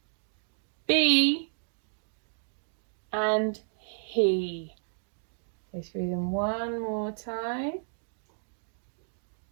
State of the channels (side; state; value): left; silent; digital silence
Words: be, and he. Go through them one more time.